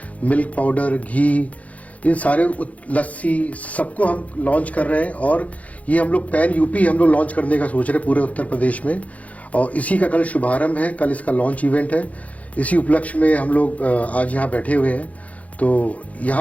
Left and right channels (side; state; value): right; late; 0.068 ms